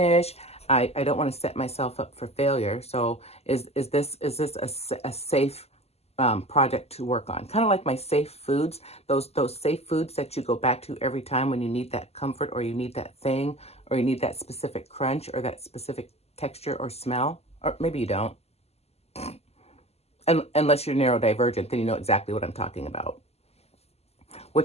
I don't want to set myself up for failure. So is this a safe project to work on. Kind of like my safe foods, those safe foods that you go back to every time when you need that comfort, or you need that thing, or you need that specific crunch or that specific texture or smell, or maybe you don't. Unless you're neurodivergent, then you know exactly what I'm talking about.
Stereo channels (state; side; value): late; right; 0.30 ms